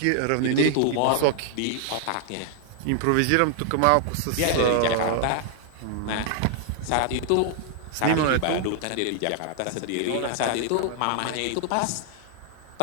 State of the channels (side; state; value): both; different; correlation 0.00